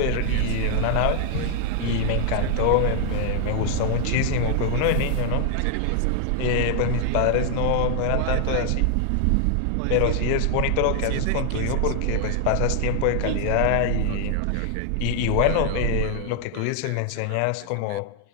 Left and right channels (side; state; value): both; different; correlation 0.00